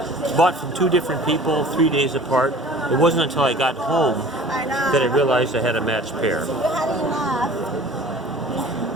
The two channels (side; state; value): both; normal; correlation 0.45